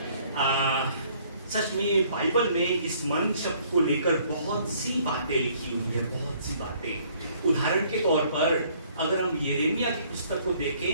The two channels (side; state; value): both; inverted; correlation -0.61